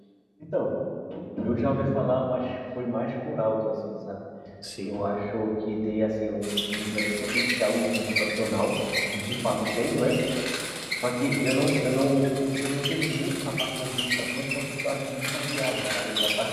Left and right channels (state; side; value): identical; both; correlation 1.00